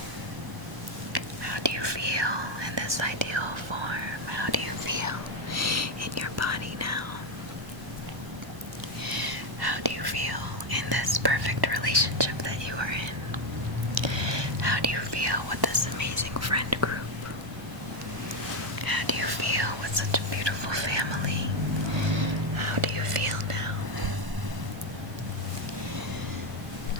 How do you feel do you feel with this amazing friend group? How do you feel with such a beautiful family? How do you feel now?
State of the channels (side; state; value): left; late; 1.0 ms